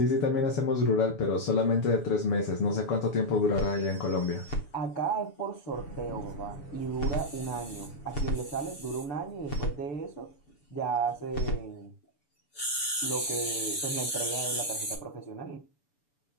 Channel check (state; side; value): late; right; 6.9 ms